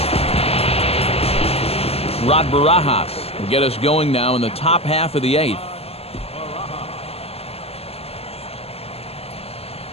Rod Barajas will get us going now in the top half of the 8th.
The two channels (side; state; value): right; late; 0.29 ms